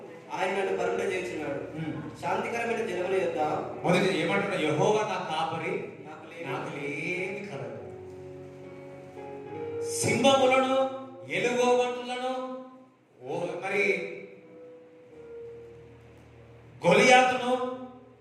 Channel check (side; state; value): both; identical; correlation 1.00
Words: ఆయన నన్ను పరుగున చేర్చున్నాడు. శాంతికరమైన జలముల యొద్ద. మొదటి ఏమంటున్నా? యెహోవా నా కాపరి, నాకు లేమి కలగదు. సింహములను ఎలుగుబంటులను మరి గొలియాతును